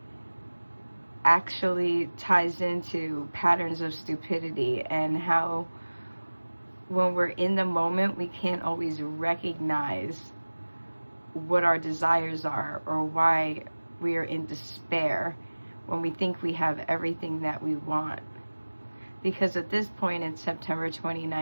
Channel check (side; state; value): both; inverted; correlation -1.00